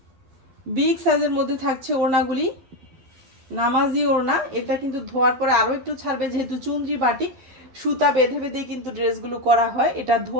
বিগ সাইজের মধ্যে থাকছে ওড়নাগুলি, নামাজি ওড়না। এটা কিন্তু ধোয়ার পরে আরো একটু ছাড়বে, যেহেতু চুনরি বাটিক সুতা বেঁধে বেঁধে কিন্তু ড্রেসগুলো করা হয়, এটা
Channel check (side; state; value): left; late; 12 ms